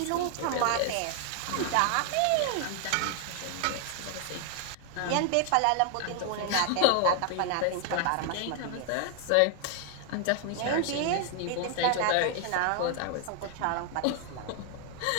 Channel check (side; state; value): both; different; correlation 0.00